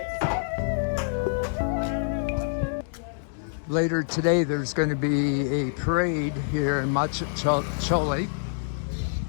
Later today, there's going to be a parade here in Majkhali,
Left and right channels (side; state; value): right; silent; digital silence